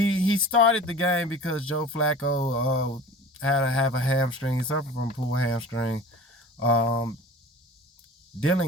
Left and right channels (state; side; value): normal; both; correlation 0.40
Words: started the game because Joe Flacco had to have a hamstring. He suffered from a pulled hamstring. Dylan